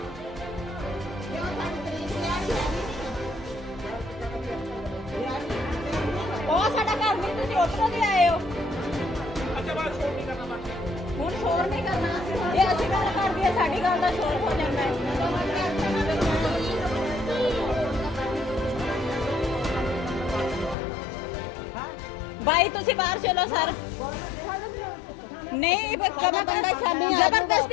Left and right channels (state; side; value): drops out; right; at 20.8 s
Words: ਉਹ ਸਾਡਾ ਘਰ ਨਹੀਂ ਤੁਸੀਂ ਉਧਰੋਂ ਦੀ ਆਏ ਹੋ ਅੱਛਾ ਬਾਤ ਸ਼ੋਰ ਨਹੀਂ ਕਰਨਾ ਬਾਕੀ ਹੁਣ ਸ਼ੋਰ ਨਹੀਂ ਕਰਨਾ ਇਹ ਅਸੀਂ ਗੱਲ ਕਰਦੀ ਹੈ ਸਾਡੀ ਗੱਲ ਦਾ ਸ਼ੋਰ ਹੋ ਜਾਂਦਾ ਹੈ ਭਾਈ ਤੁਸੀਂ ਬਾਹਰ ਚਲੋ ਸਰ ਨਹੀਂ